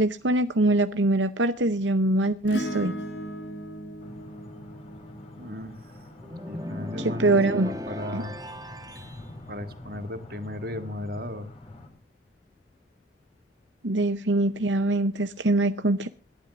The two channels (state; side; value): normal; both; correlation 0.44